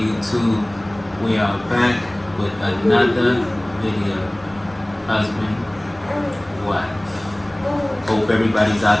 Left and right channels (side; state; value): left; noise; rumble, 27 dB below the sound